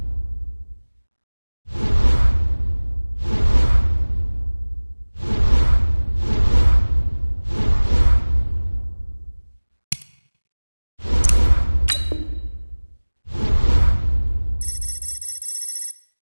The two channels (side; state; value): both; inverted; correlation -1.00